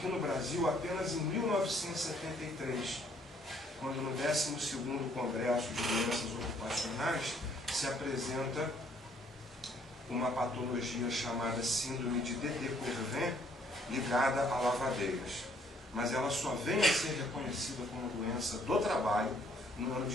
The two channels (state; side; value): normal; both; correlation 0.65